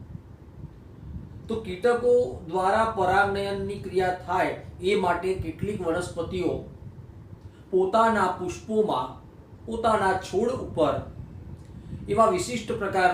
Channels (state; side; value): identical; both; correlation 1.00